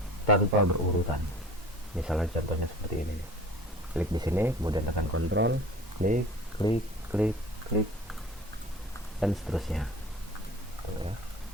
tanpa berurutan. Misalnya contohnya seperti ini. Klik di sini, kemudian tekan kontrol, klik, klik, klik, klik, dan seterusnya. Tuh ya.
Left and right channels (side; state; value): both; normal; correlation 0.43